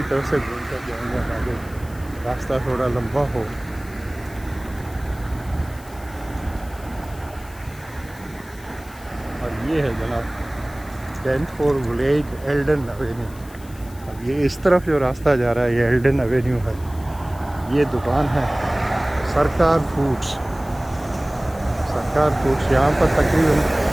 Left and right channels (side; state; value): left; noise; hiss, 22 dB below the sound